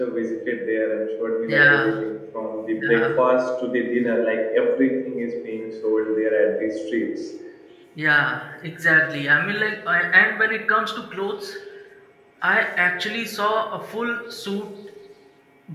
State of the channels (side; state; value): both; identical; correlation 1.00